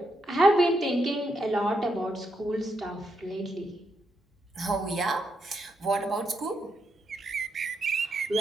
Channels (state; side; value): normal; both; correlation 0.81